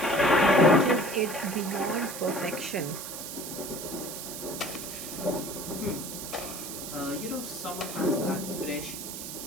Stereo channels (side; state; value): right; noise; hiss, 8 dB below the sound